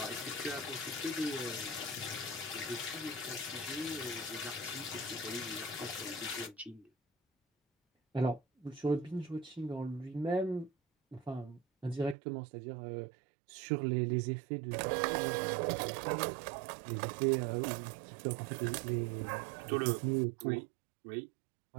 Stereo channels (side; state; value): left; drops out; at 12.2 s